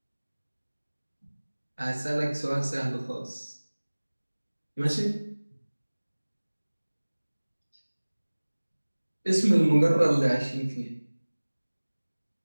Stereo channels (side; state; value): both; inverted; correlation -1.00